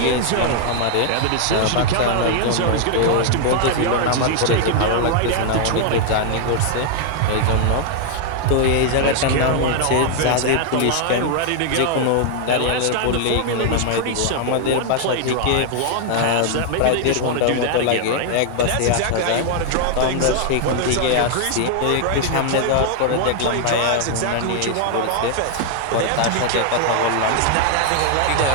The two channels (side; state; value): both; different; correlation 0.00